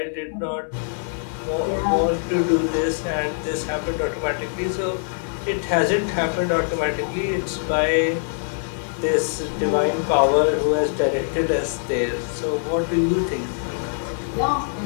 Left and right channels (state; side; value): silent; right; digital silence